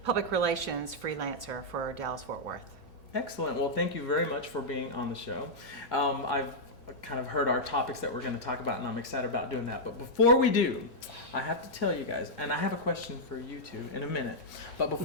public relations freelancer for Dallas Fort Worth. Excellent. Well, thank you very much for being on the show. I've kind of heard our topics that we're going to talk about, and I'm excited about doing that. But before we do, I have to tell you guys, and I have a question for you two in a minute. But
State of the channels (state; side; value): normal; both; correlation -0.07